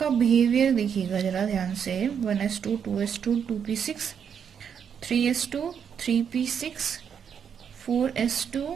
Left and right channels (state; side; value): quieter; left; 7.6 dB